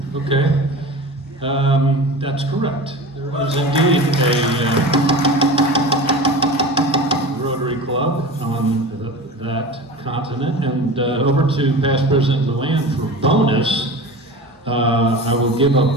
Okay, that's correct. There is indeed a Rotary Club on that continent. And over to Past President Luann for bonus. I will give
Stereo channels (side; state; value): both; normal; correlation 0.33